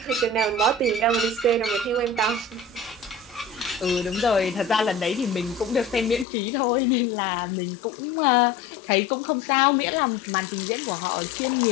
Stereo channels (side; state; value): right; drops out; at 6.2 s